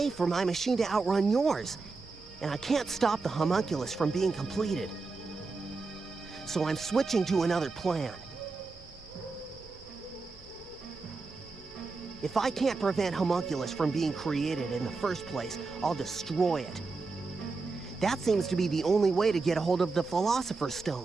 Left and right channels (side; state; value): left; quieter; 4.0 dB